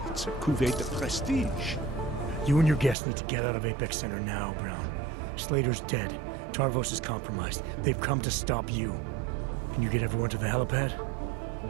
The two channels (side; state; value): left; drops out; at 3.0 s